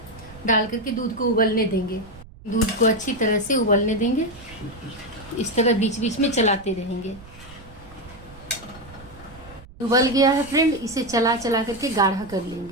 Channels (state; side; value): noise; right; rumble, 20 dB below the sound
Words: डाल करके दूध को उबलने देंगे। दूध को अच्छी तरह से उबलने देंगे। इस तरह बीच बीच में चलाते रहेंगे। उबल गया है फ्रेंड, इसे चला चला करके गाढ़ा कर